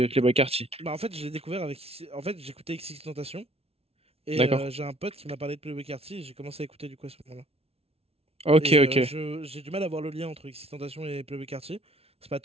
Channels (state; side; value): late; left; 0.29 ms